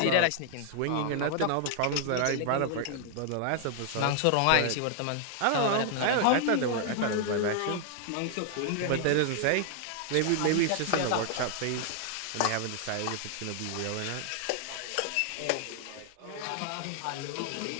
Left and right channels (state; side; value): different; both; correlation 0.00